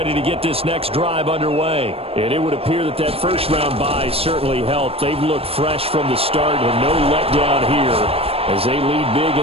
to get this next drive underway. And it would appear that that first-round bye certainly helped. They've looked fresh from the start and no letdown here as they lead big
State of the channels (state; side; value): late; left; 0.28 ms